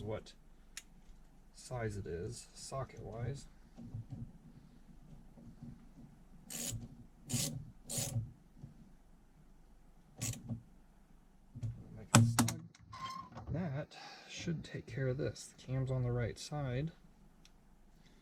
what size it is, socket wise. Make it snug. That should take care of this. The cam's on the right side.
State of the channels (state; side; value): identical; both; correlation 1.00